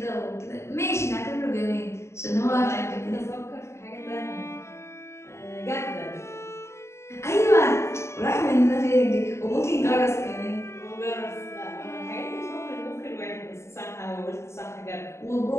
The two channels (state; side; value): late; right; 0.13 ms